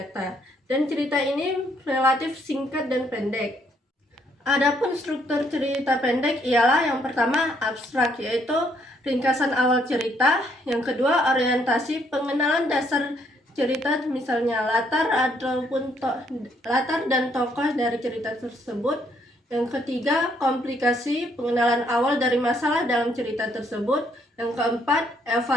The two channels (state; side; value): normal; both; correlation 0.70